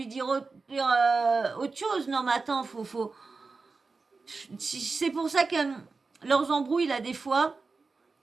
dire autre chose. Non, mais attends, faut. C'est pour ça que leurs embrouilles là des fois.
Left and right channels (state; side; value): quieter; left; 4.2 dB